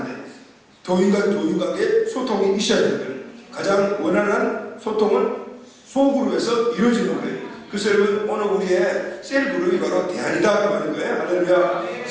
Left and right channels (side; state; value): both; identical; correlation 1.00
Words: 돼요. 교인과 교인 관계 소통이 있어야 되는 거예요. 가장 원활한 소통은 소그룹에서 이루어지는 거예요. 그래서 여러분, 오늘 우리의 셀그룹이 바로 대안이다 그 말인 거예요. 할렐루야.